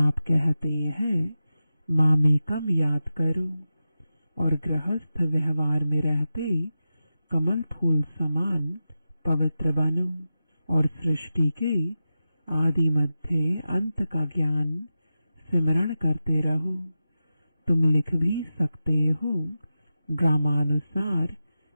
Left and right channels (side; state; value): both; inverted; correlation -0.92